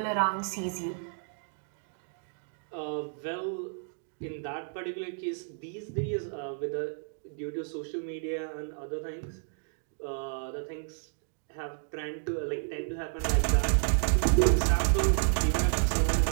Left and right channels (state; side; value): silent; left; digital silence